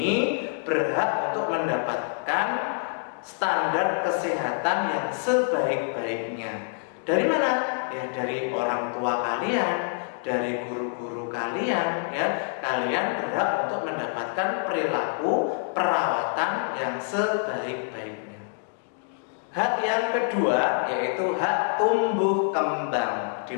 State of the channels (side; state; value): right; silent; 61 dB below the other